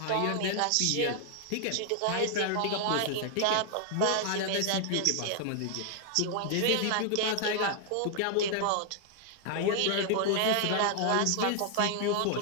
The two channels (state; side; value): different; both; correlation 0.00